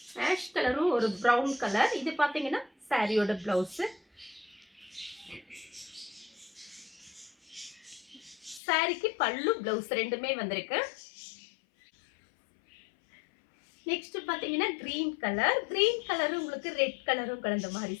ஆஷ் கலரும் ஒரு பிரவுன் கலர். இது பாத்தீங்கன்னா சாரியோட பிளவுஸ். சாரிக்கு பல்லு பிளவுஸ் ரெண்டுமே வந்திருக்கு. நெக்ஸ்ட் பாத்தீங்கன்னா கிரீன் கலர். கிரீன் கலரும் உங்களுக்கு ரெட் கலரும் கலந்த மாதிரி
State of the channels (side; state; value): right; drops out; at 8.6 s